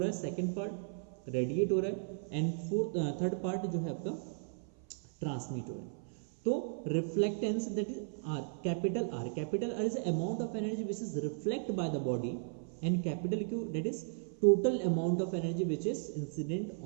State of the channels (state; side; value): silent; left; 54 dB below the other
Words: है, सेकेंड पार्ट रेडिएट हो रहा है एंड थर्ड पार्ट जो है आपका ट्रांसमिट हो रहा है। तो reflectance that is R, capital R is amount of energy which is reflect by the body and capital Q that is total amount of energy which is incident